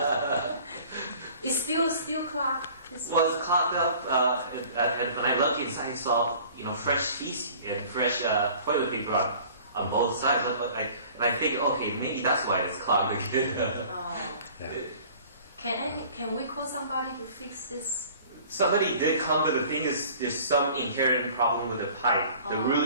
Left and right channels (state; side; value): inverted; both; correlation -0.48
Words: It's still clogged. Well, it's clogged up, and when I look inside, I saw fresh feces and fresh toilet paper on both sides. And I think, okay, maybe that's why it's clogged again. Yeah. Can we call somebody to fix this? Somebody did come, but the thing is, there's some inherent problem with the pipe. The